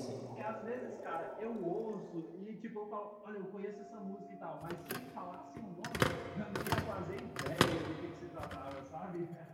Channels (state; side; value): identical; both; correlation 1.00